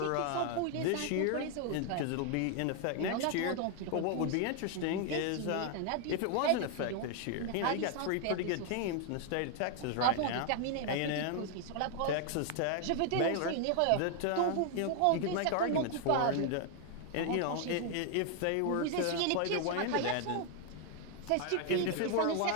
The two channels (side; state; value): both; different; correlation 0.00